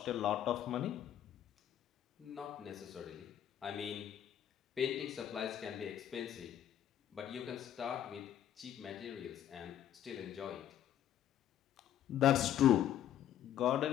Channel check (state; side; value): quieter; right; 10.8 dB